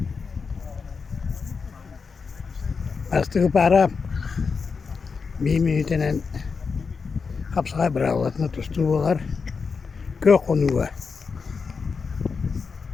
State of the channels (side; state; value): right; quieter; 5.2 dB